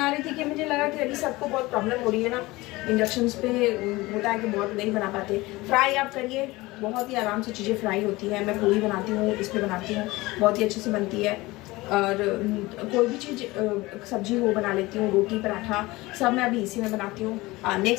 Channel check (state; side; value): quieter; right; 20.7 dB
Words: रही थी कि मुझे लगा कि अभी सबको बहुत प्रॉब्लम हो रही है ना, इंडक्शन पे होता है कि बहुत नहीं बना पाते। फ्राई आप करिए, बहुत ही आराम से चीज़ें फ्राई होती है। मैं पूरी बनाती हूँ, इस पर बनाती हूँ, बहुत ही अच्छे से बनती है। और कोई भी चीज़ सब्जी हो बना लेती हूँ, रोटी पराठा सब मैं अभी इसी में बनाती हूँ।